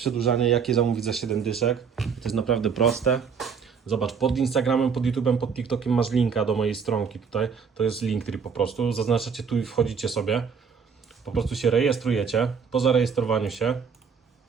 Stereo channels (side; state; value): left; quieter; 6.2 dB